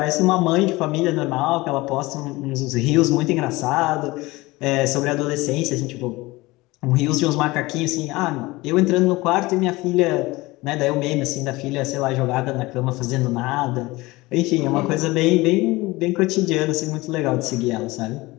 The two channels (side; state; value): right; quieter; 21.0 dB